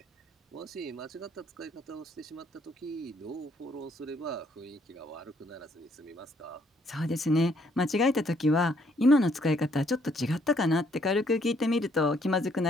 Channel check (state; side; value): normal; both; correlation 0.68